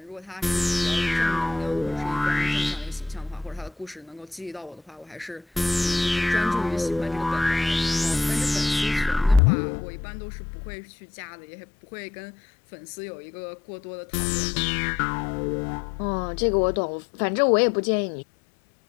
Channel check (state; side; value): drops out; right; at 9.4 s